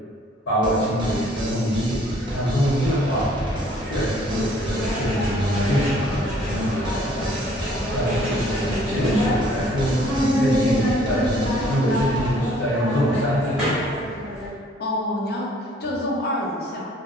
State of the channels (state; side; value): normal; both; correlation 0.59